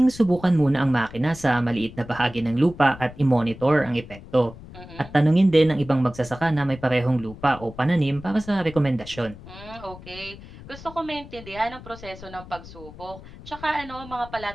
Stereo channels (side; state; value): left; noise; rumble, 17 dB below the sound